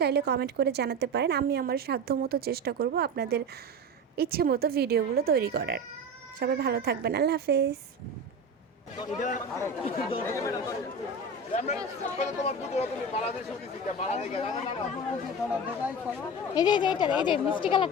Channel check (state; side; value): normal; both; correlation 0.26